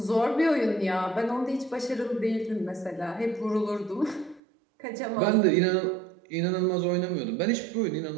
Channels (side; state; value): left; drops out; at 4.4 s